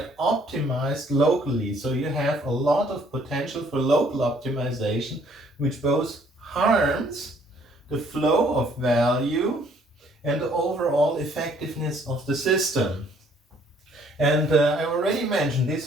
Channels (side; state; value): both; normal; correlation 0.62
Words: optimized locally. So you have a lot of potential for local optimization, which both harms the flow of value and the overall effectiveness of the system. And I already mentioned